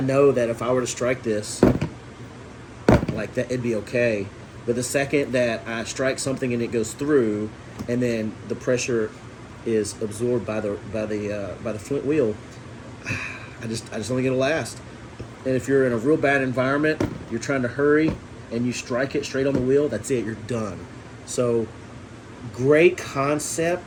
know that if I were to strike this like that, it'd be okay. But the second that I strike something and it goes through, and then the pressure is absorbed by the flint wheel, I just don't think it'll last. And if you're in a real bad environment, you're trying to hurry, and you strike it straight on the wheel, that's it, you're done. So, great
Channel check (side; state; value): both; identical; correlation 1.00